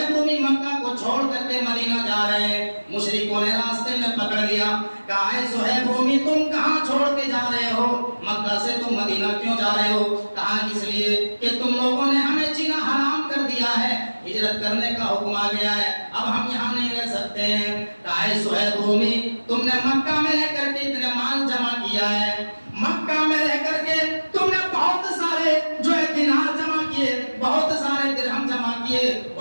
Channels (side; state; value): both; inverted; correlation -1.00